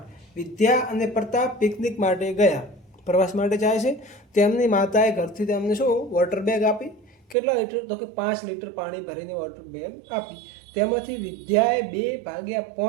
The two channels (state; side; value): drops out; left; at 7.4 s